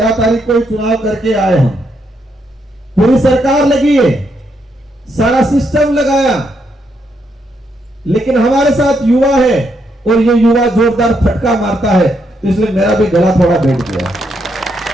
तारीख को चुनाव करके आए हम। पूरी सरकार लगी है, सारा सिस्टम लगाया, लेकिन हमारे साथ युवा है, और ये युवा जोरदार फटका मारता है, तो इसलिए मेरा भी गला थोड़ा बैठ गया।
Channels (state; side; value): normal; both; correlation 0.78